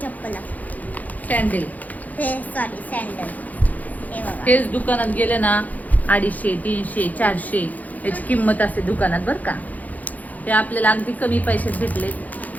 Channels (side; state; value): right; late; 0.079 ms